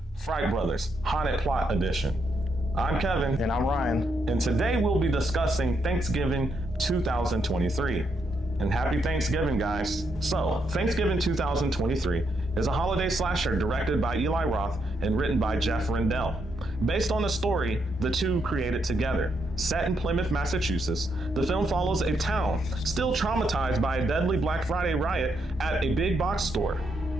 Fright Brothers Haunted Plot Edition. I'm Kevin. And I'm Ryan. And today we'll be discussing Thanksgiving 2023. And happy Thanksgiving, guys. So, Thanksgiving 2023 is a holiday slasher directed by Eli Roth and written by Jeff Rendell. Based on a story the two created together. Set in Plymouth, Massachusetts, the film follows a town still traumatized by a deadly Black Friday riot at a big box store.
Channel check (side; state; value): both; normal; correlation 0.78